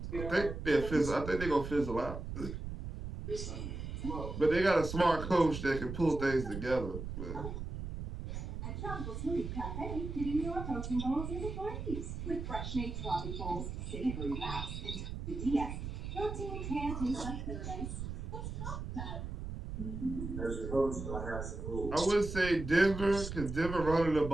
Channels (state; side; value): noise; right; rumble, 6 dB below the sound